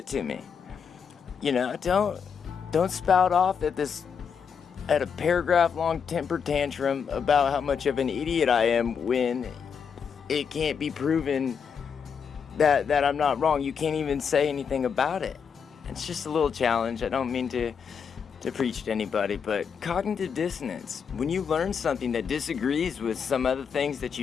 to me. Don't spout off at a paragraph long temper tantrum about how much of an idiot I am when it can't be proven that I'm not wrong. You can't even say anything about it. It's just a little challenge. I don't mean to preach to anybody, but cognitive dissonance. When you learn something that disagrees with some other things that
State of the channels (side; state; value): right; quieter; 6.7 dB